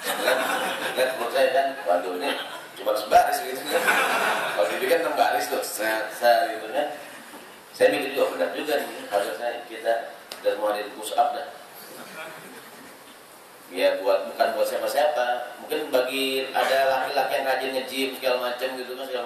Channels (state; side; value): identical; both; correlation 1.00